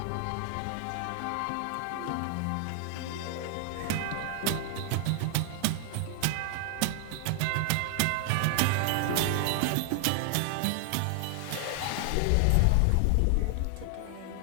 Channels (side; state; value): both; different; correlation 0.00